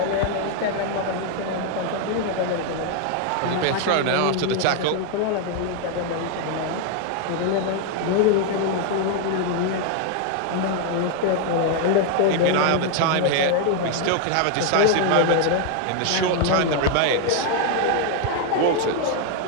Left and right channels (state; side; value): different; both; correlation 0.01